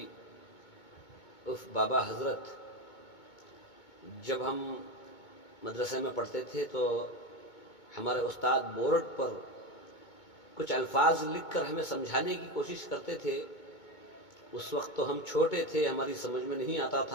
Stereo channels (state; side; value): late; right; 2.2 ms